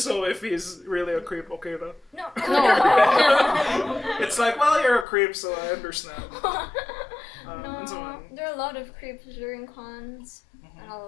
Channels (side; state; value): right; drops out; at 5.1 s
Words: if he's really a creep, okay na? No. It's like, well, you're a creep, so I understand. And so No. on. There are a lot of creeps during cons. And a